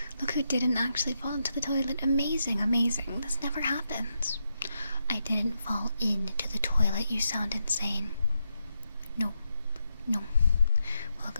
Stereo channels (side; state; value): both; inverted; correlation -0.83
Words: look who didn't actually fall into the toilet. Amazing, amazing. This never happens. I didn't fall into the toilet. You sound insane. No, no.